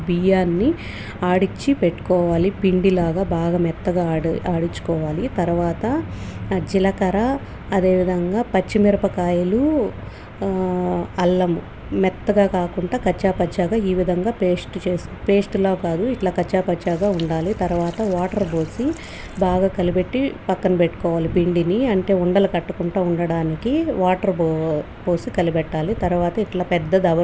బియ్యాన్ని ఆడిచ్చి పెట్టుకోవాలి. పిండిలాగా బాగా మెత్తగా ఆడించుకోవాలి. తర్వాత జీలకర్ర, అదేవిధంగా పచ్చిమిరపకాయలు, అల్లము మెత్తగా కాకుండా కచ్చాపచ్చాగా ఈ విధంగా పేస్ట్లా కాదు, ఇట్లా కచ్చాపచ్చాగా ఉండాలి. తర్వాత వాటర్ పోసి బాగా కలిపెట్టి పక్కన పెట్టుకోవాలి. పిండిని అంటే ఉండలు కట్టుకుంటూ ఉండడానికి వాటర్ పోసి కలిపెట్టాలి. తర్వాత ఇట్లా పెద్ద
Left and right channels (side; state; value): both; identical; correlation 1.00